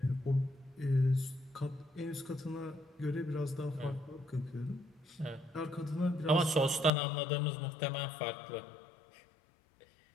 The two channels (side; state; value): right; drops out; at 6.9 s